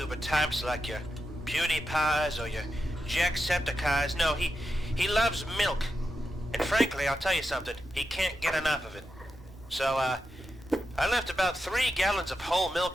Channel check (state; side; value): normal; both; correlation 0.88